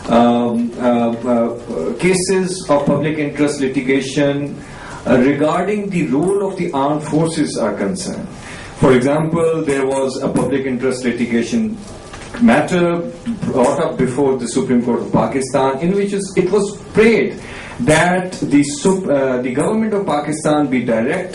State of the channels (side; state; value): both; identical; correlation 1.00